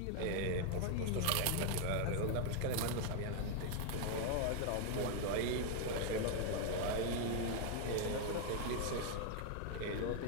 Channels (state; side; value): different; both; correlation 0.00